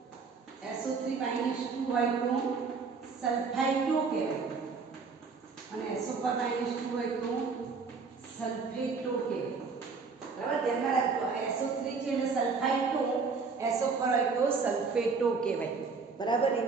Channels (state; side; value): quieter; left; 4.8 dB